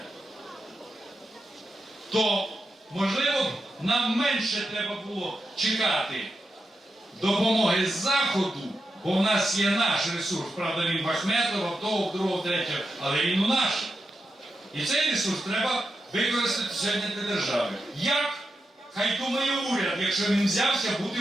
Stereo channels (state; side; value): normal; both; correlation 0.88